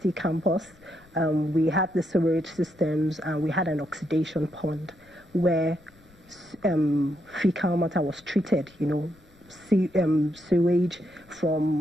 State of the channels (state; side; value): noise; left; rumble, 27 dB below the sound